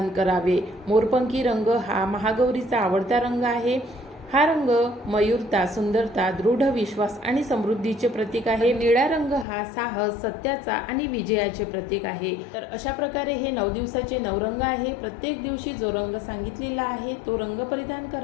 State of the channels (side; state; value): right; drops out; at 9.5 s